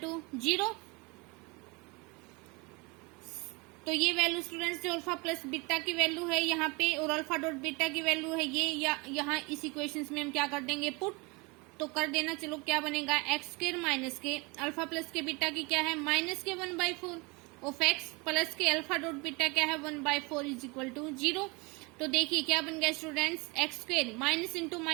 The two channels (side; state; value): left; quieter; 27.4 dB